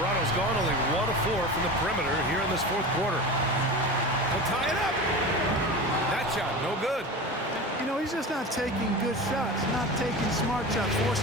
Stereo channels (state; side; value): normal; both; correlation 0.30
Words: gone only 1 of 4 from the perimeter here in this fourth quarter. They'll tie it up. That shot, no good. You know, he's just not taking good shots, not taking smart shots,